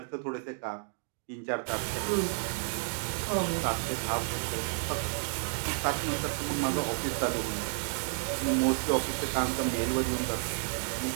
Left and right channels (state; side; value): silent; left; 57 dB below the other